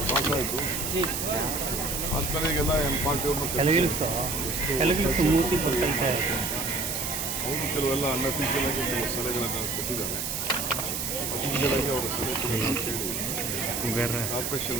ಪಾಸ್ ಆಯಿತು. ಆದ್ಮೇಲೆ ಈಗೆಲ್ಲ ಪಾರ್ಟಿಯವ್ರನ್ನ ಅವರು ಕೆಲವೆಲ್ಲ ಅನ್ಅಫಿಷಿಯಲ್ ಆಗಿ ಕೆಲವು ಸಲಹೆಗಳನ್ನು ಕೊಟ್ಟಿದ್ದಾರೆ. ಅಫಿಷಿಯಲ್ ಆಗಿ ಅವರ ಸಲಹೆ ಕೇಳಿ ಕಾರ್ಪೊರೇಷನ್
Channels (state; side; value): noise; right; hiss, 2 dB below the sound